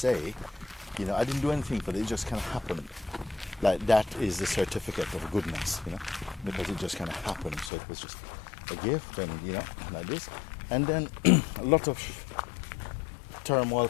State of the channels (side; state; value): right; drops out; at 7.7 s